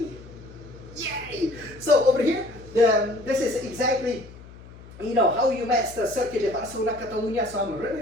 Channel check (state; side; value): noise; left; hum, 19 dB below the sound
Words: Yay! So over here, this is exactly how you master Circuit de Barcelona, Catalunya. So I'm